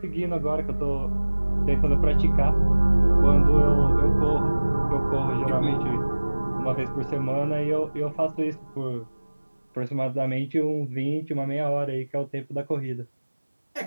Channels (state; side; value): inverted; both; correlation -1.00